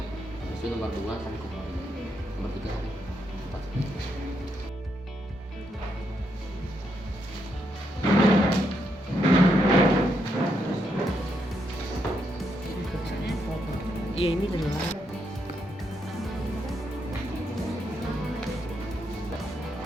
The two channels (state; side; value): normal; both; correlation 0.79